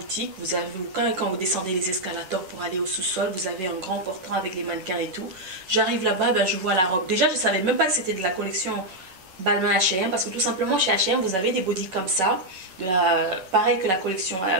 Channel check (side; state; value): left; late; 11 ms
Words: Vous avez, quand vous descendez les escalators pour aller au sous-sol, vous avez un grand portant avec les mannequins et tout. J'arrive là-bas, ben, je vois la robe. Déjà, je ne savais même pas que c'était de la collection Balmain H&M parce que tout simplement, chez H&M, vous avez des bodys comme ça. Pareil que la collection